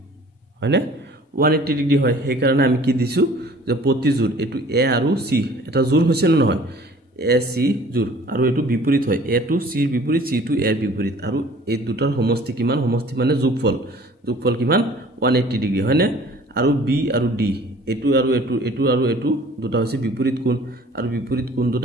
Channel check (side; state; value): both; normal; correlation 0.50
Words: হয় না 180 ডিগ্ৰী হয় সেই কাৰণে আমি কি দিছো যে প্ৰতিযোৰ এটো A আৰু C এটা জোৰ হৈছে না নহয় AC জোৰ আৰু এটো বিপৰীত হয় A টু C বিপৰীত C টু A বিপৰীত আৰু এই দুটাৰ সমষ্টি কিমান সমষ্টি মানে যোগফল কিমান 180 ডিগ্ৰী হয় না আৰু B আৰু D এটো আৰু এটো দুটা হৈছে বিপৰীত কোণ আৰু বিপৰীত কোণ